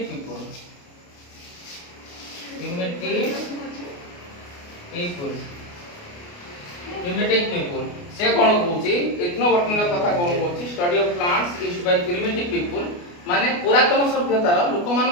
people से कौन कहूची इथनोबॉटनी कथा कौन कहूची study of plants used by primitive people माने पुरातन सभ्यतार लोक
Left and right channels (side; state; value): right; late; 29 ms